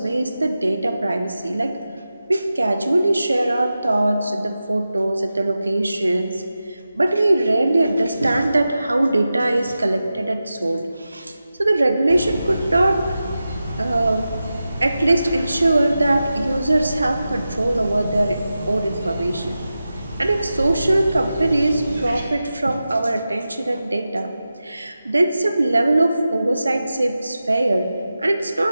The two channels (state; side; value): inverted; both; correlation -0.92